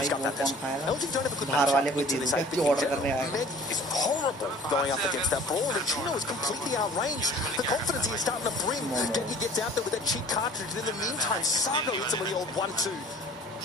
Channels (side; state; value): both; normal; correlation 0.48